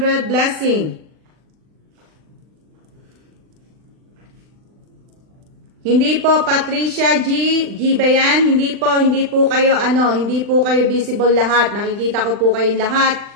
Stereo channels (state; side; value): late; left; 39 ms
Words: blessing. Hindi po Patricia G. G ba yan? Hindi po kayo hindi po kayo visible lahat. Nakikita ko po kayong lahat.